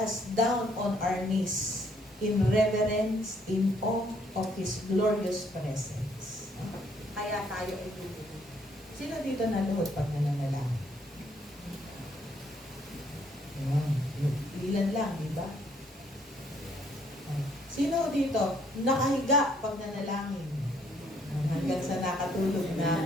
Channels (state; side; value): normal; both; correlation 0.67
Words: down on our knees in reverence, in awe of His glorious presence. No? Kaya tayo itulungan. Sino dito naluhod pag nananalangin? Ilan lang, di ba? Sino dito nakahiga pag nanalangin? Hanggang sa nakatulog na.